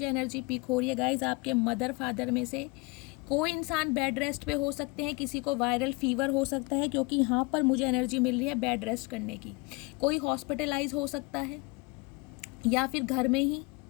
एनर्जी पिक हो रही है गाइज, आपके मदर फादर में से कोई इंसान बेड रेस्ट पे हो सकते हैं, किसी को वायरल फीवर हो सकता है, क्योंकि यहाँ पर मुझे एनर्जी मिल रही है बेड रेस्ट करने की। कोई हॉस्पिटलाइज हो सकता है, या फिर घर में ही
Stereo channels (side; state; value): right; quieter; 26.6 dB